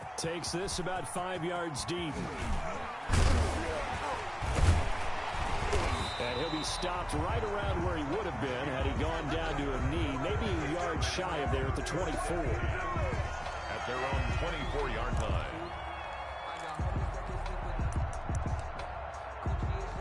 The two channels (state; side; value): identical; both; correlation 1.00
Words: Takes this about 5 yards deep. And he'll be stopped right around where he would have been had he gone down to a knee, maybe a yard shy of there at the 24. At their own 24-yard line.